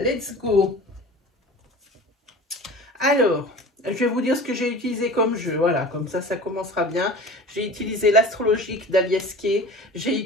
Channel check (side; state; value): both; normal; correlation 0.38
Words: go. Alors, je vais vous dire ce que j'ai utilisé comme jeu. Voilà, comme ça commencera bien. J'ai utilisé l'astrologique d'Aliesquet. J'ai